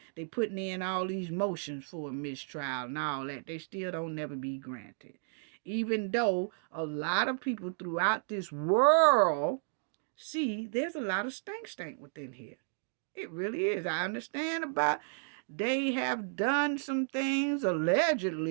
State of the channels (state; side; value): silent; left; digital silence